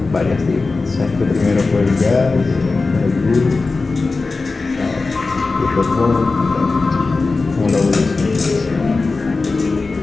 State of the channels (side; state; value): right; quieter; 3.8 dB